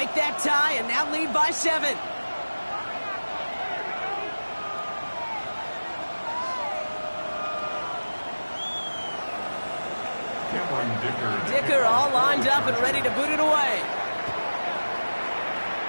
that tie and now lead by 7. Dicker all lined up and ready to boot it away.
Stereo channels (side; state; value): both; inverted; correlation -1.00